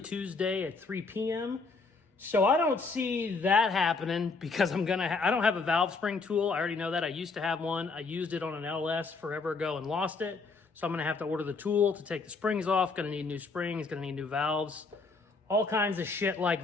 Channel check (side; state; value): right; quieter; 4.2 dB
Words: Tuesday at 3 p.m. So I don't see that happening because I don't have a valve spring tool. I already know that. I used to have one. I used it on an LS forever ago and lost it. So I'm gonna have to order the tool to take the springs off. Gonna need new springs, gonna need new valves. All kinds of shit